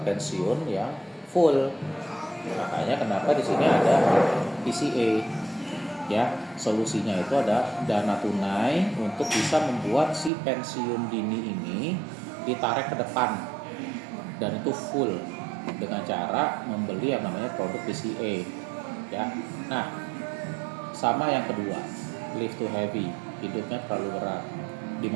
pensiun yang full. Makanya kenapa di sini ada PCA. Ya, solusinya itu ada dana tunai untuk bisa membuat si pensiun dini ini ditarik ke depan dan itu full dengan cara membeli yang namanya produk PCA. Ya, nah sama yang kedua, live too heavy, hidupnya terlalu berat,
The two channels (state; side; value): drops out; left; at 10.3 s